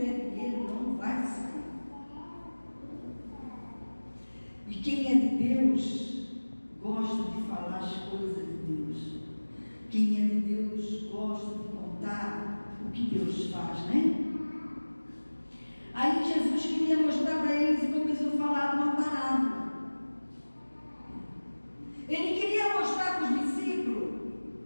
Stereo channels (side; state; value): both; inverted; correlation -1.00